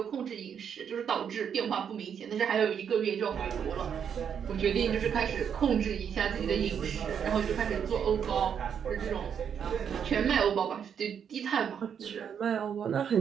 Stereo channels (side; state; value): left; quieter; 7.8 dB